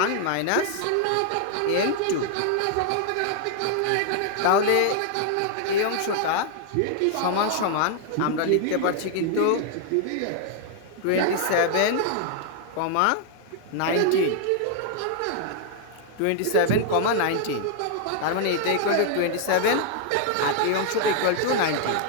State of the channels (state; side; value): different; both; correlation 0.00